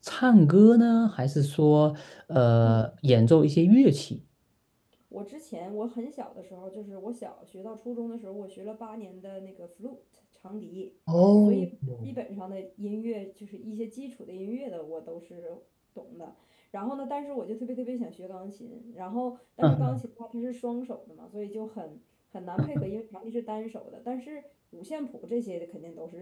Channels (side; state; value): both; identical; correlation 1.00